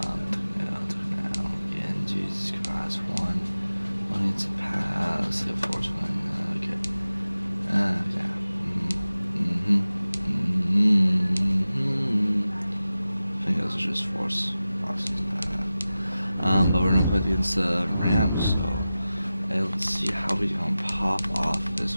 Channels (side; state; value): both; inverted; correlation -0.95